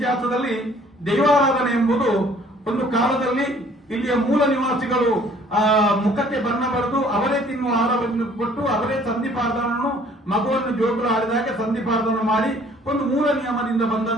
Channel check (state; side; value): normal; both; correlation 0.57